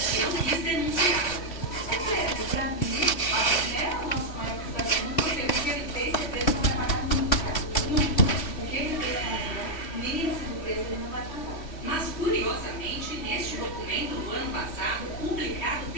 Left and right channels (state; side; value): late; right; 2.9 ms